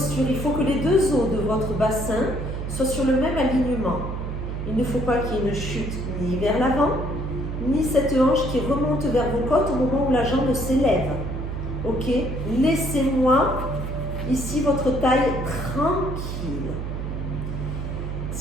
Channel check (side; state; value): right; noise; hum, 5 dB below the sound